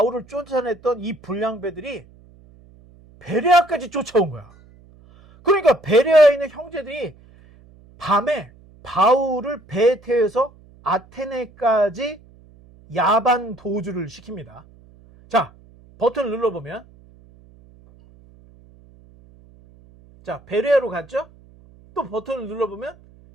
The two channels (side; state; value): right; noise; hum, 26 dB below the sound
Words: 쫓아냈던 이 불량배들이 베레아까지 쫓아온 거야. 그러니까 베레아에 있는 형제들이 밤에 바울을 배에 태워서 아테네까지 야반 도주를 시킵니다. 자, 버튼을 눌러보면 자, 베레아로 갔죠? 또 버튼을 눌러보면